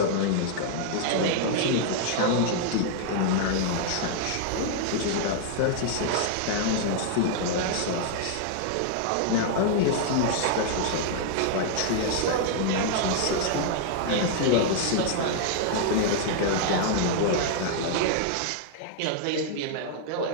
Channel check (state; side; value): different; both; correlation -0.01